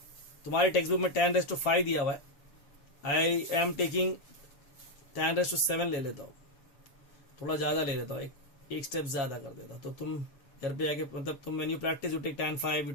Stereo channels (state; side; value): late; right; 7.0 ms